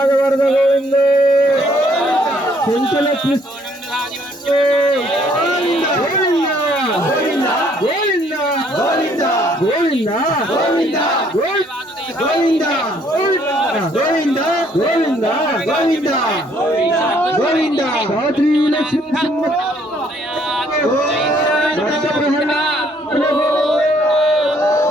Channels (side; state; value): both; normal; correlation 0.65